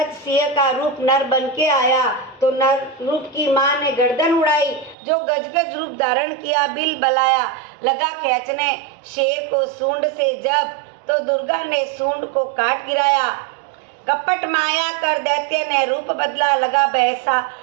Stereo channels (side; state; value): left; drops out; at 5.0 s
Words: सिंह का रूप नर बन के आया। तो नर रूप की माँ ने गर्दन उड़ाई, जो गजगज रूप धारण किया बिल बलाया। लगा खींचने शेर को सूंड से जब, तो दुर्गा ने सूंड को काट गिराया। कपट माया कर दैत्य ने रूप बदला, लगा भैंसा